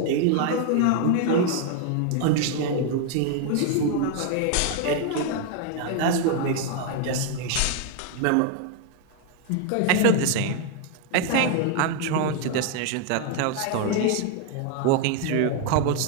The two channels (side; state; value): both; different; correlation 0.00